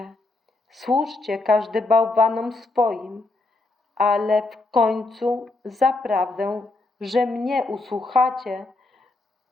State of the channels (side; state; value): right; quieter; 3.0 dB